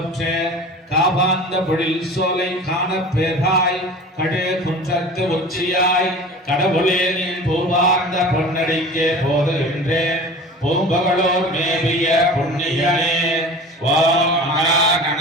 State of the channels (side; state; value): both; normal; correlation 0.38